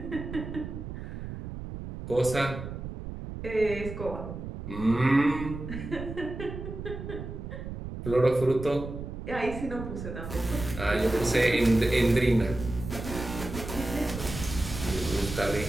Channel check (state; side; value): noise; right; rumble, 8 dB below the sound